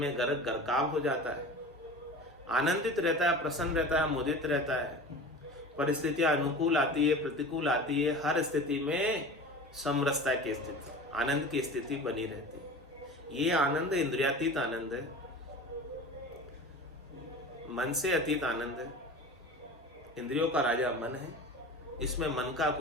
गर्क गरकाव हो जाता है, आनंदित रहता है, प्रसन्न रहता है, मुदित रहता है। परिस्थितियां अनुकूल आती है, प्रतिकूल आती है, हर स्थिति में समरसता की स्थिति, आनंद की स्थिति बनी रहती है। ये आनंद इंद्रियातीत आनंद है, मन से अतीत आनंद है। इंद्रियों का राजा मन है, इसमें मन का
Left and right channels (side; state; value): both; normal; correlation 0.35